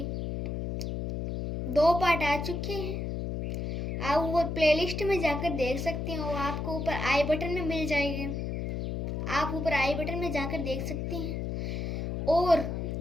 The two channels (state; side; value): noise; left; hum, 3 dB below the sound